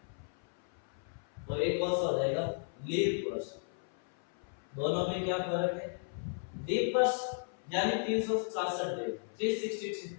और एक कौन सा हो जाएगा? लीप वर्ष। दोनों में क्या फर्क है? लीप वर्ष यानी 366 डेज,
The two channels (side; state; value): right; silent; 55 dB below the other